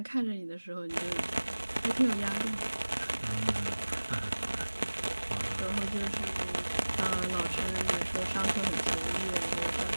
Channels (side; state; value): both; inverted; correlation -1.00